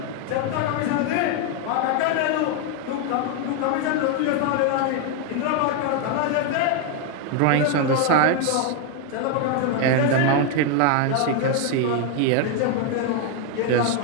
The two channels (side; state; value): both; different; correlation 0.01